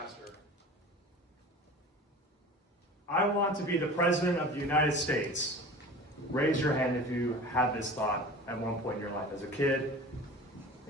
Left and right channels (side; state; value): both; normal; correlation 0.38